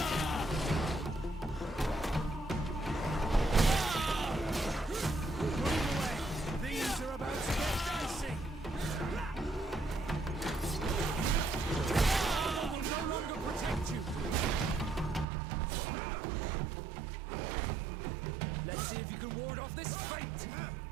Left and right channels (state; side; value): drops out; left; at 15.2 s